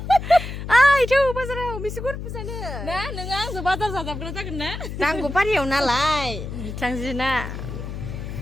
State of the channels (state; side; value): noise; left; hum, 7 dB below the sound